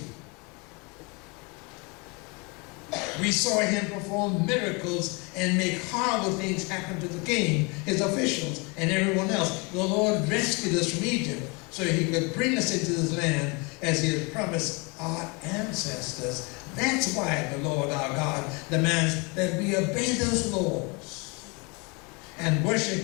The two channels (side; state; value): right; quieter; 29.6 dB